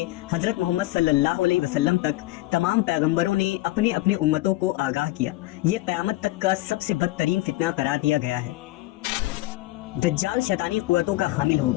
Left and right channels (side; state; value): right; quieter; 18.6 dB